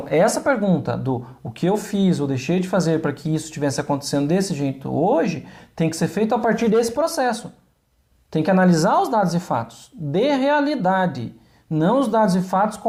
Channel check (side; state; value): both; identical; correlation 1.00